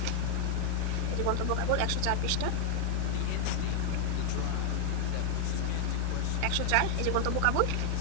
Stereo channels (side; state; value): both; different; correlation 0.00